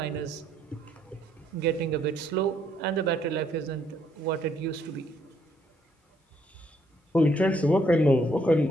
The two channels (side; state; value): both; normal; correlation 0.70